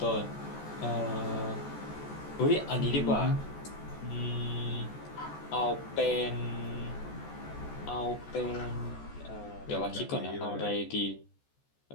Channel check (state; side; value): late; right; 14 ms